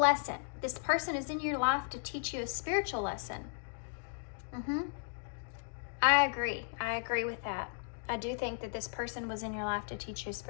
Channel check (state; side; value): silent; right; digital silence